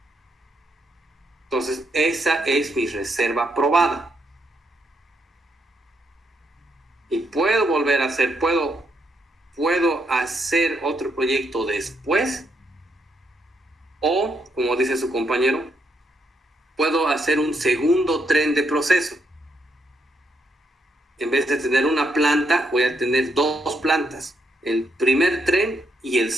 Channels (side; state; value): both; normal; correlation 0.77